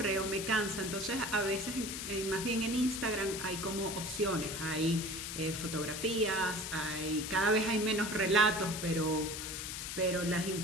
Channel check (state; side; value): noise; left; hiss, 5 dB below the sound